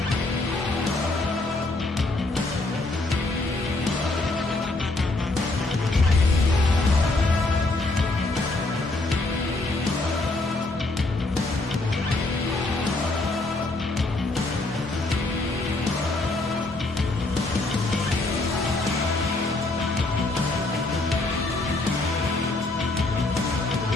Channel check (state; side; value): quieter; right; 3.0 dB